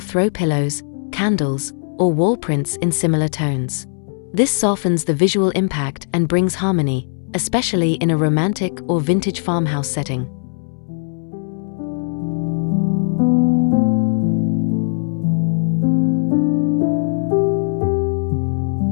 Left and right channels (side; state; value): right; silent; 67 dB below the other